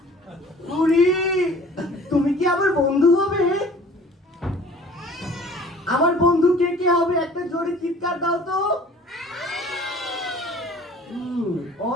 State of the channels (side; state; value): both; normal; correlation 0.49